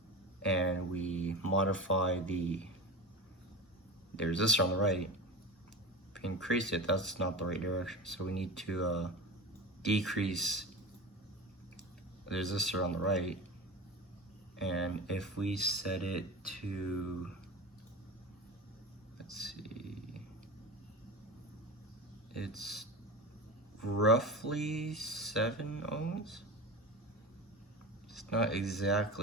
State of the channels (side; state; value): both; normal; correlation 0.29